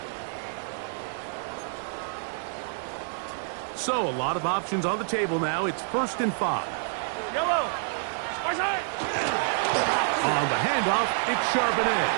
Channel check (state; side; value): silent; left; 60 dB below the other